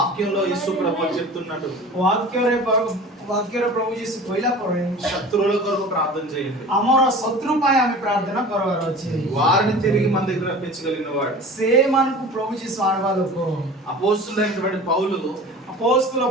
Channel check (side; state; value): both; normal; correlation 0.39